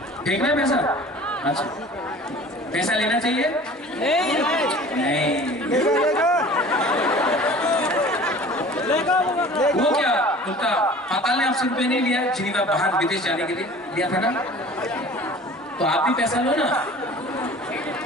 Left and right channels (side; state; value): both; normal; correlation 0.44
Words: फेंकना है पैसा? अच्छा, पैसा लेना चाहिए? नहीं। वो क्या उनका पाताल ने आपसे रुपये नहीं लिया? जिनीवा बाहर विदेश जाने के लिए लिया था ना? तो आप भी पैसा लो ना।